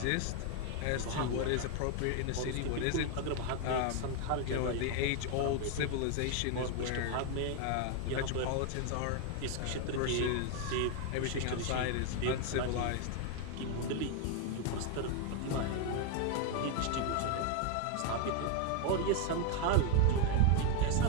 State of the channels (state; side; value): different; both; correlation 0.01